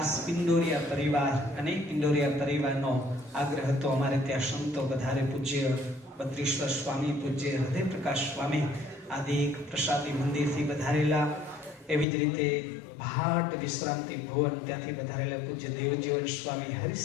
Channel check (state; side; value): drops out; right; at 12.1 s